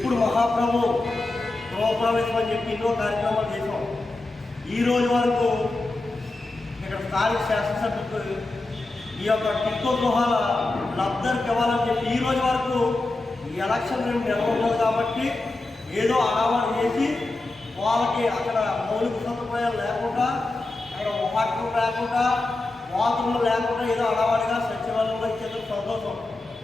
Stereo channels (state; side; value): quieter; right; 3.0 dB